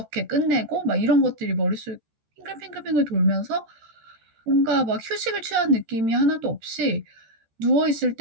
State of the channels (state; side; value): late; left; 13 ms